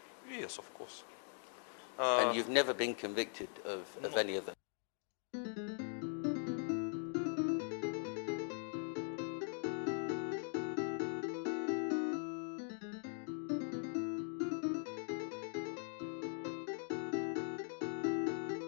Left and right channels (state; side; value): silent; right; 50 dB below the other